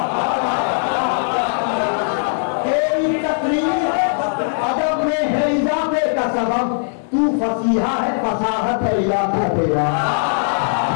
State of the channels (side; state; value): right; silent; 63 dB below the other